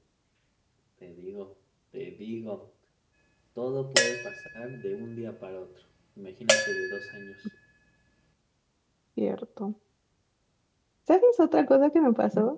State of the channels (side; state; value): both; identical; correlation 1.00